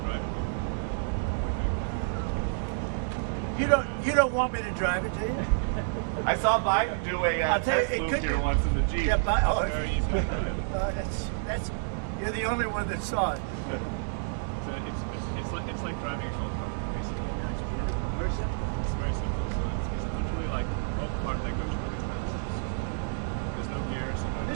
drive it? You don't want me to drive it, do you? I saw Biden do a I'll tell you, test it loop could here be- once in the Jeep. Yeah, but Very easy. that's you're the only one that saw it. So it's like driving a golf cart, basically. person? It's very simple. So it's literally like both car that goes really fast. There's no gears. No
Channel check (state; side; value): silent; left; digital silence